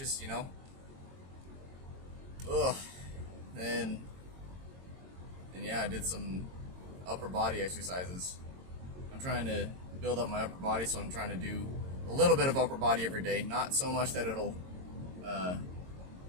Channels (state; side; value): late; left; 22 ms